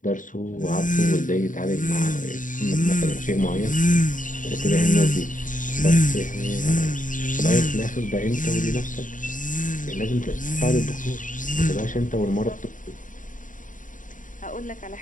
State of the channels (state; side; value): late; right; 0.38 ms